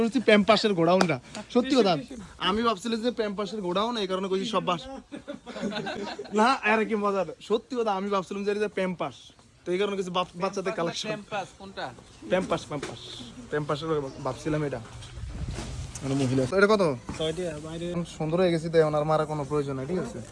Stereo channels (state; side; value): identical; both; correlation 1.00